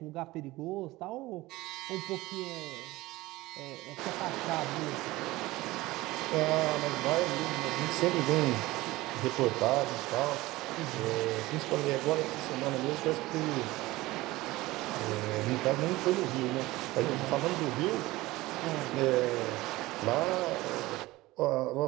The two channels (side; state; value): left; quieter; 19.1 dB